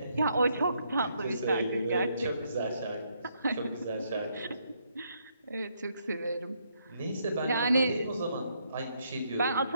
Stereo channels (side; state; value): both; inverted; correlation -0.74